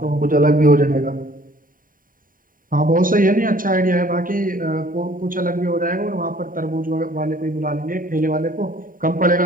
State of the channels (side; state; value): left; late; 0.40 ms